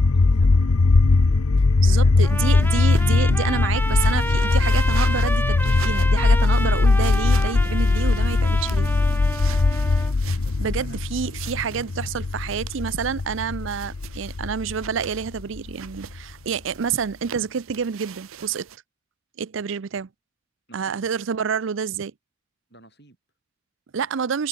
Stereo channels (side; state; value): both; normal; correlation 0.74